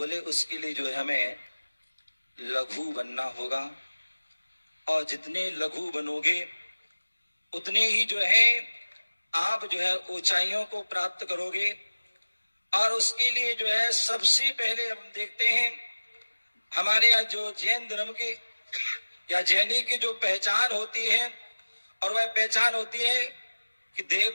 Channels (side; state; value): both; inverted; correlation -1.00